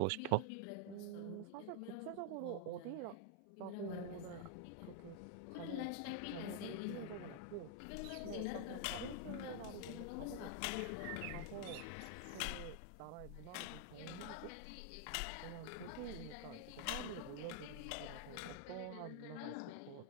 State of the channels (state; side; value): different; both; correlation 0.00